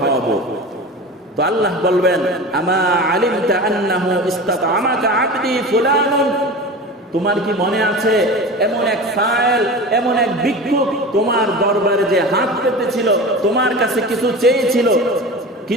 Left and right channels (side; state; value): both; normal; correlation 0.32